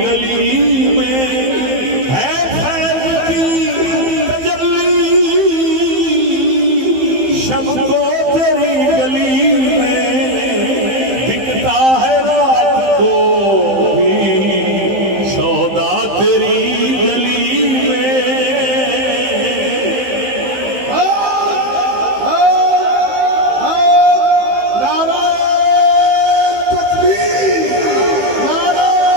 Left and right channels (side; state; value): left; late; 15 ms